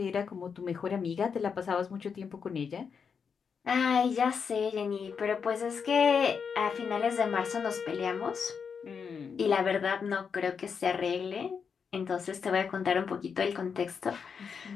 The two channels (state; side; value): quieter; right; 6.3 dB